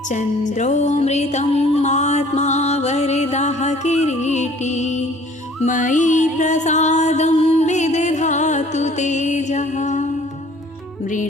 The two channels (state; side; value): normal; both; correlation 0.53